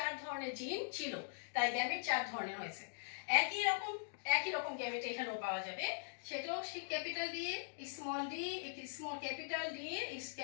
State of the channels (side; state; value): right; silent; digital silence